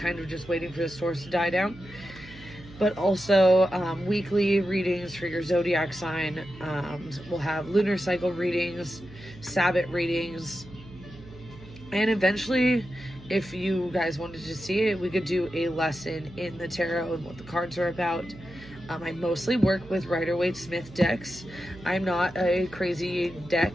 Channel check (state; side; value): noise; right; hum, 19 dB below the sound